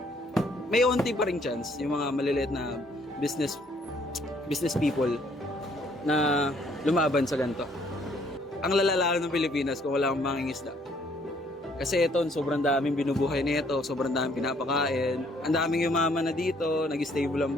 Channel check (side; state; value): both; normal; correlation 0.65